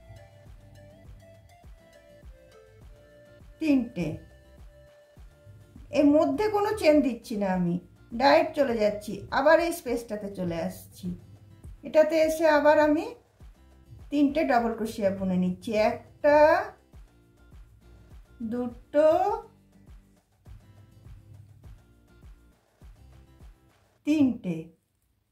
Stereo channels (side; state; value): both; identical; correlation 1.00